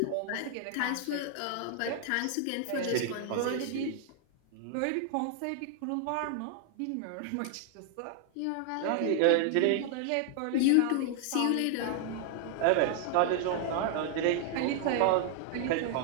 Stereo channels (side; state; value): both; different; correlation 0.00